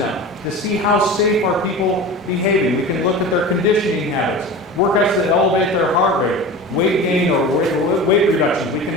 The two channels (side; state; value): both; normal; correlation 0.33